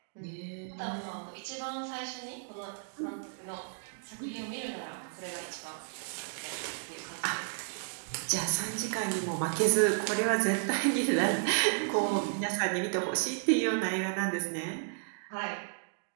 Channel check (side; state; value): left; silent; digital silence